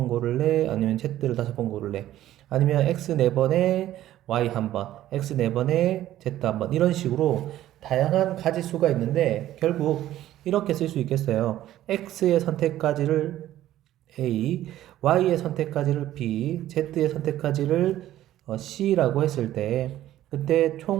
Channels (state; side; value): quieter; left; 13.4 dB